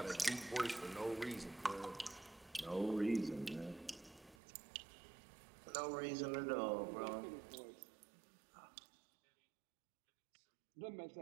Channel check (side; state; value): left; drops out; at 4.4 s